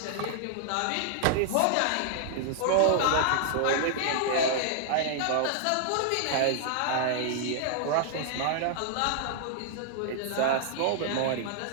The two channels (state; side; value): different; both; correlation -0.01